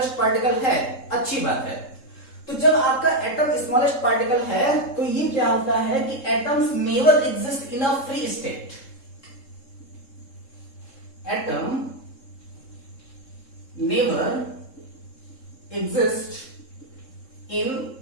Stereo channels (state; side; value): late; right; 3.7 ms